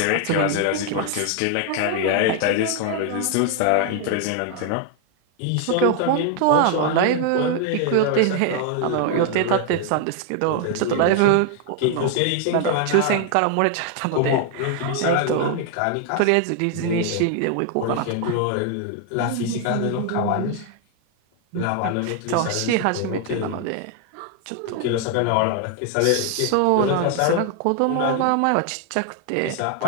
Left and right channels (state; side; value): different; both; correlation 0.00